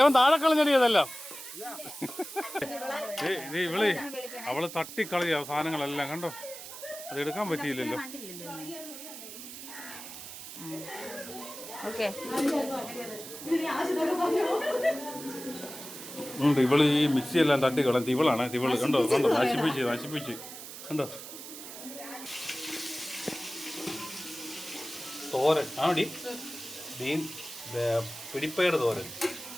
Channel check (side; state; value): right; noise; hiss, 12 dB below the sound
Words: അവൻ താഴെ കളഞ്ഞടി അതെല്ലാം. ഇവള് അവള് തട്ടിക്കളയ സാധനങ്ങളെല്ലാം കണ്ടോ? അത് എടുക്കാൻ പറ്റിയില്ലല്ലോ. ഉണ്ട്. ഇവള് ഈ മിക്സി എല്ലാം തട്ടിക്കളഞ്ഞ് ഇവളാണ്. ഇവള് കണ്ടോ കണ്ടോ നശിപ്പിച്ച് കണ്ടോ. തോരൻ ആടി ബീൻ പിടിപ്പയർ തോരൻ,